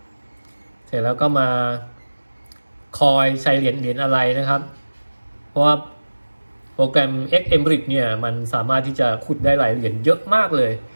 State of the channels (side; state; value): both; inverted; correlation -1.00